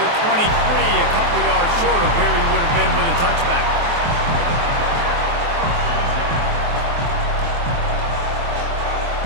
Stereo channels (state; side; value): late; left; 23 ms